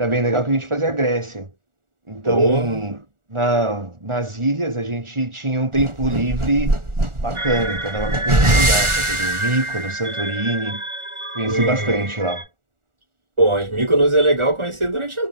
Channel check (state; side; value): late; left; 1.4 ms